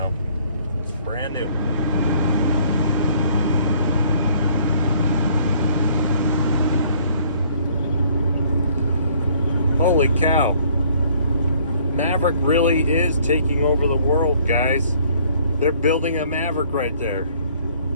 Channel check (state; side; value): inverted; both; correlation -0.59